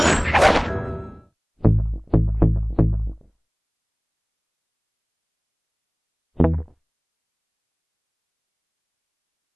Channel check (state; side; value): identical; both; correlation 1.00